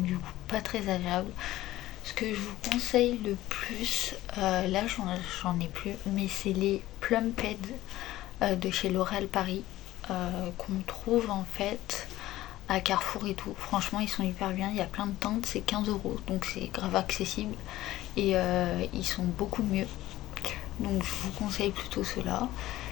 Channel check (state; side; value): quieter; right; 15.7 dB